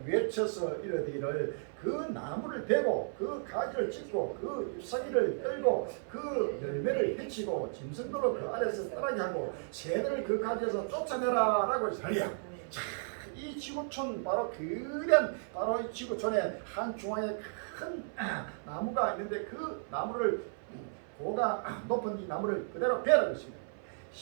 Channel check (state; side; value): silent; left; 55 dB below the other